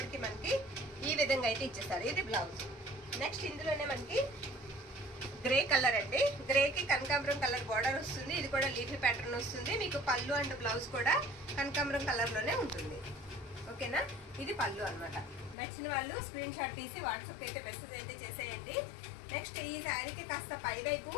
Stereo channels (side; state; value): right; drops out; at 15.6 s